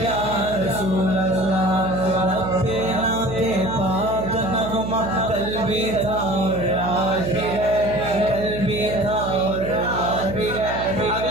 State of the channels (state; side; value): noise; right; hum, 7 dB below the sound